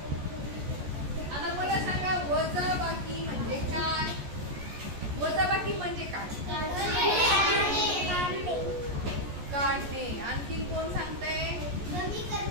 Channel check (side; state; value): left; late; 14 ms